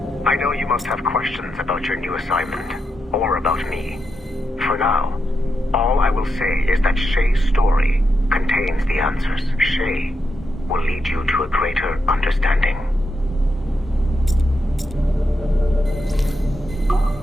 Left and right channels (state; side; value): normal; both; correlation 0.85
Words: I know you must have questions about your new assignment, or about me. For now, all I will say is that Shay's story contains the answers. Shay will lead you to a greater understanding.